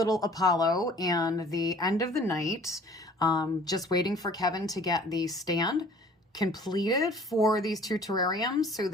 Apollo and the end of the night. Just waiting for Kevin to get the stand completed for these 2 terrariums so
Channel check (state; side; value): normal; both; correlation 0.52